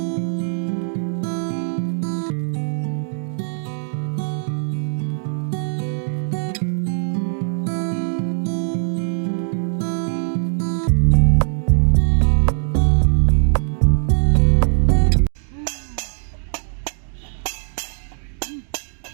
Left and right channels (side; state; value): left; silent; digital silence